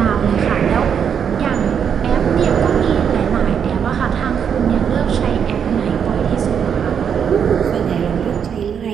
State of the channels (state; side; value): quieter; left; 7.6 dB